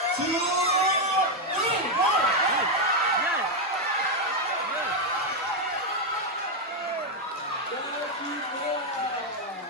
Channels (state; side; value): normal; both; correlation 0.03